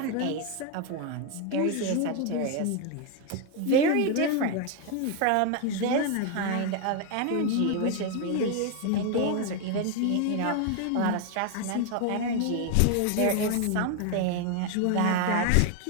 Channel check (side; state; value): both; different; correlation 0.01